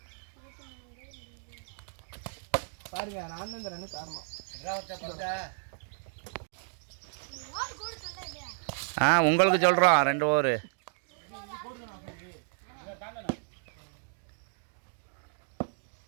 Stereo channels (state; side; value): silent; left; digital silence